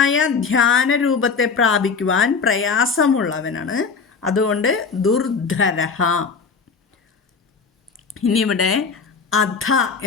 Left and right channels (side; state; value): right; quieter; 5.3 dB